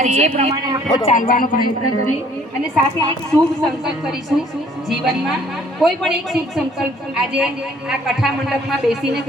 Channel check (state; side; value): normal; both; correlation 0.58